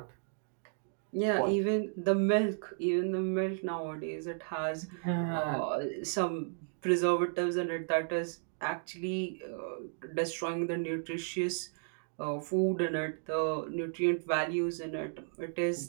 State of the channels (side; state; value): left; silent; digital silence